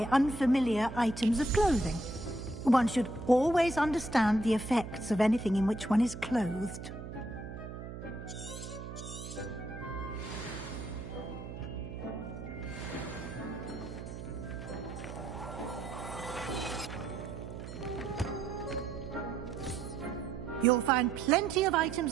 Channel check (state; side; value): noise; right; hum, 10 dB below the sound